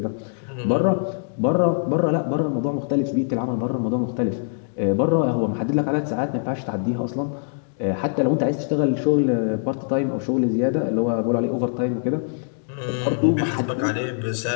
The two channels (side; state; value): right; silent; digital silence